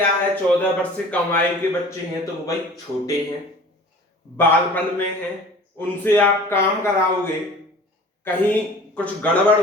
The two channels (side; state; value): both; normal; correlation 0.44